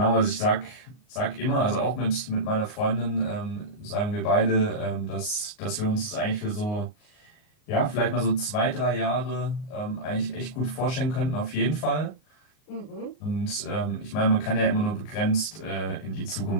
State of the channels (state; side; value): late; right; 38 ms